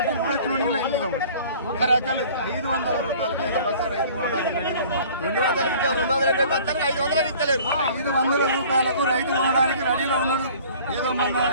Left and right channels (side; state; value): both; inverted; correlation -0.49